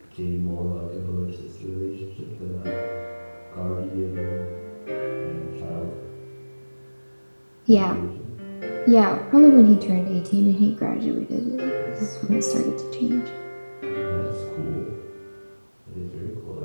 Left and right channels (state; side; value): inverted; both; correlation -1.00